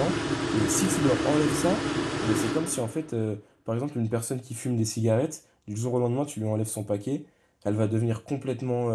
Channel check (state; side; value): identical; both; correlation 1.00